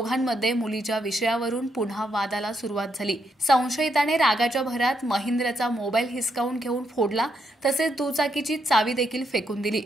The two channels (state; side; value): normal; both; correlation 0.78